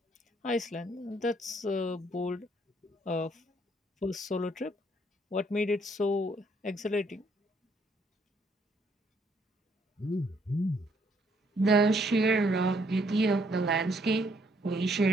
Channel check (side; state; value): both; normal; correlation 0.68